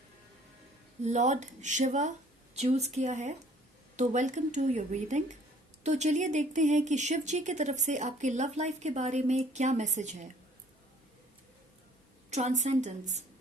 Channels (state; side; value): normal; both; correlation 0.56